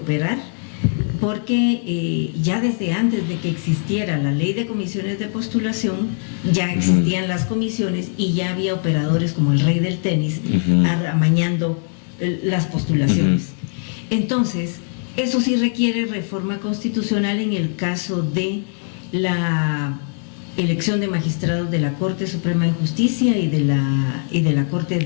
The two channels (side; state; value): right; silent; 65 dB below the other